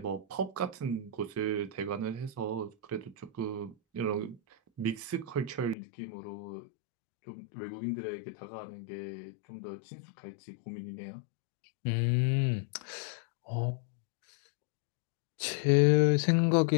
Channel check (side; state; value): right; drops out; at 5.8 s